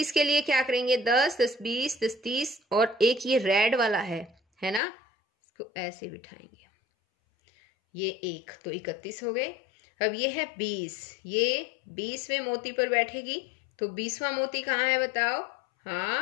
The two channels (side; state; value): right; drops out; at 4.8 s